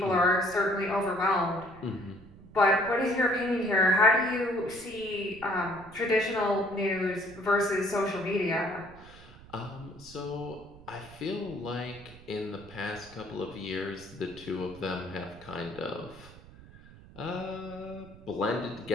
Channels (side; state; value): right; noise; rumble, 20 dB below the sound